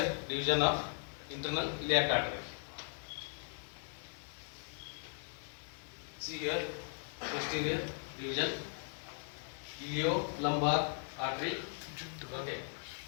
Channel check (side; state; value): right; silent; 52 dB below the other